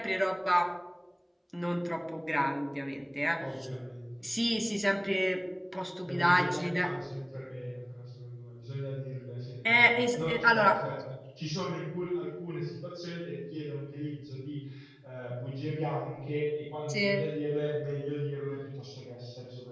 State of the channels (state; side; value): identical; both; correlation 1.00